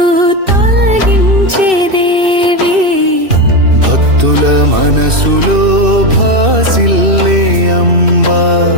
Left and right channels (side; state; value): left; late; 2.6 ms